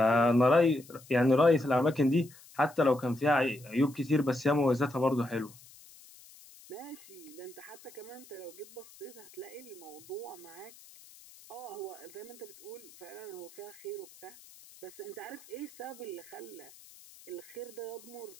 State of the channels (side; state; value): left; noise; hiss, 22 dB below the sound